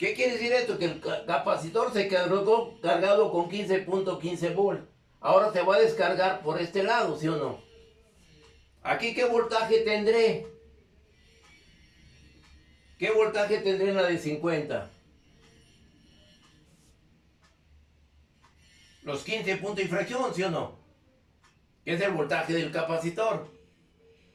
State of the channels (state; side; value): identical; both; correlation 1.00